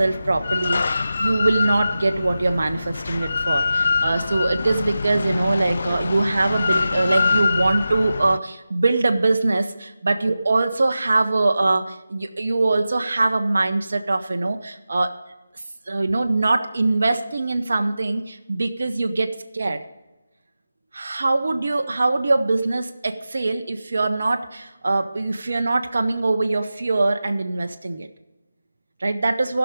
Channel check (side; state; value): both; inverted; correlation -0.94